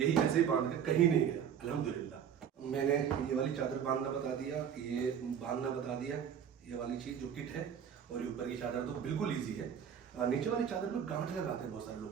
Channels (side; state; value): left; quieter; 8.3 dB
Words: ऐसे ही बांध के कहीं नहीं गया अल्हम्दुलिल्लाह। मैंने ये वाली चादर बांधना बता दिया, ये बांधना बता दिया, ये वाली चीज जो किट है, और ये ऊपर की चादर तो बिल्कुल ईजी है। नीचे वाली चादर में गांठ लगाते हैं बहुत सारे